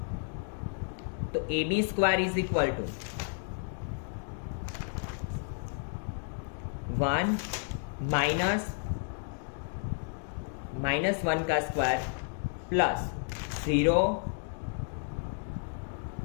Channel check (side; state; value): right; silent; 56 dB below the other